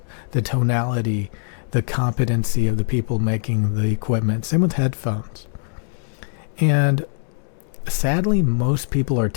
the tonality, the competency of the people making the equipment. Same with headphones. And sadly, most people are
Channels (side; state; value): right; silent; 64 dB below the other